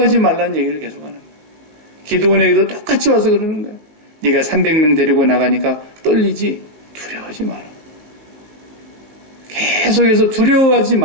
말라는 얘기를 계속하는 거예요. 기드온에게도 똑같이 와서 그러는 거예요. 네가 300명 데리고 나가니까 떨리지? 두려워하지 마라. 계속해서 두려워하지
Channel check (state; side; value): late; left; 20 ms